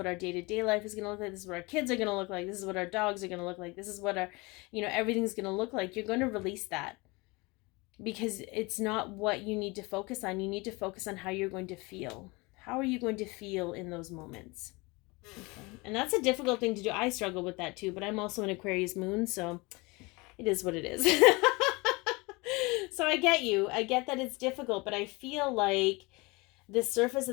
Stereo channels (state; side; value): quieter; right; 25.4 dB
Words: our day-to-day life is going to look like. This is what our kids are going to look like. This is what our dogs are going to look like. This is what our, everything's going to look like. You're going to release that because it's not what you need to focus on. You need to focus on how you're going to feel. How are you going to feel in those moments? Okay. And that's a difficult thing to do. I struggle with that too, but I'm also an Aquarius moon, so it is what it is. So I get you. I get that it's difficult, but I feel like the surface